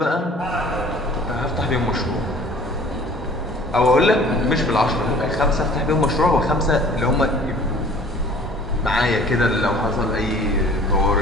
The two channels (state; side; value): normal; both; correlation 0.49